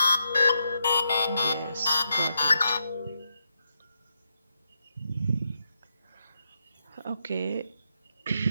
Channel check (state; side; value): inverted; both; correlation -0.83